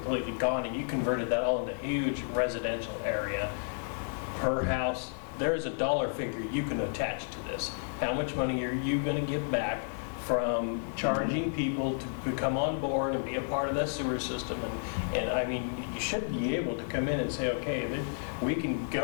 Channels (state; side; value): silent; right; digital silence